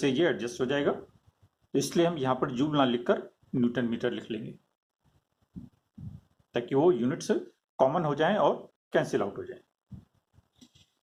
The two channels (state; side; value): identical; both; correlation 1.00